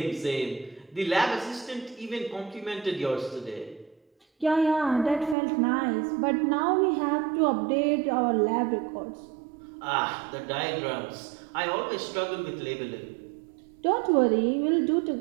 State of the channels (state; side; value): drops out; left; at 5.4 s